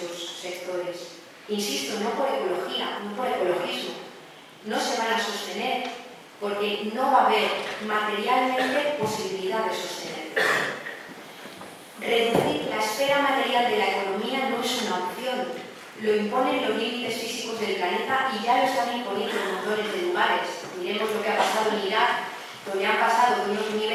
sectores. Insisto, no por ecología, no por ecologismo. No se van a sostener porque no va a haber materialmente posibilidad de sostenerlos. Reducir la esfera material de la economía no es una opción. Lo imponen los límites físicos del planeta y ya lo están imponiendo montones de lugares. Miremos lo que ha pasado en Irak, donde han pasado de unos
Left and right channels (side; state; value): both; identical; correlation 1.00